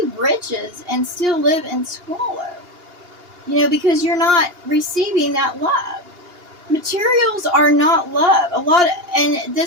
riches and still live in squalor. Because you're not receiving that love. Materials are not love. And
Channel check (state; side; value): late; left; 2.8 ms